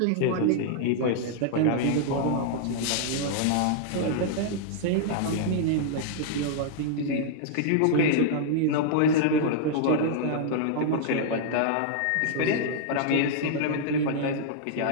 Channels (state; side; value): different; both; correlation -0.01